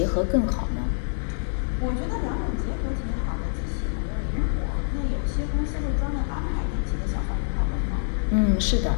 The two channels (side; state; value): right; silent; digital silence